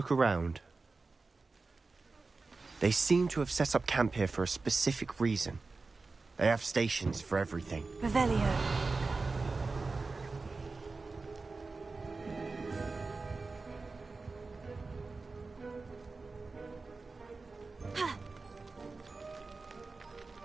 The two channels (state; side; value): quieter; left; 3.9 dB